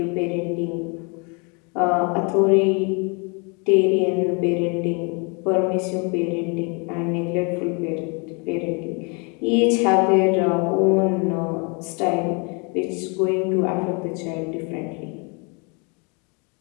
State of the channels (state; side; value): quieter; right; 33.2 dB